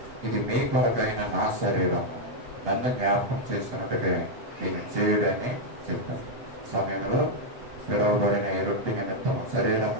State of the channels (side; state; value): left; late; 8.1 ms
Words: ఇది మీ కొరకైన నా శరీరం, నన్ను జ్ఞాపకం చేసుకున్నట్టుగా నేను చేయడని చెప్పాను. సమయంలో పిలువబడిన ఈ రొట్టె నిమిత్తము, శరీరం